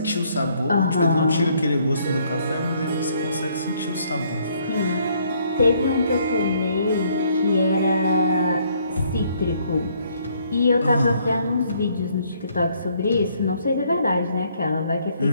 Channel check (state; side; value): inverted; both; correlation -0.67